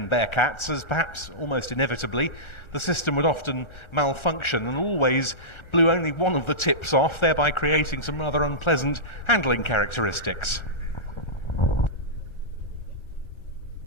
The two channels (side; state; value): right; late; 1.4 ms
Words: Bearcats, as perhaps almost inevitably the system would often malfunction and always blew only one of the tips off, thereby creating some rather unpleasant handling characteristics.